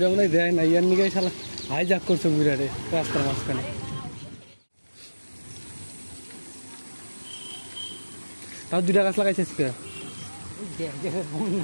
মনে হয় দেয় না, ইয়ার নিয়ে শালা হাইজাক করছে বুড়ারে রাস্তার মাঝখানে। তাও 2টা গাছ লাগাইছিস কে?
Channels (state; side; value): inverted; both; correlation -1.00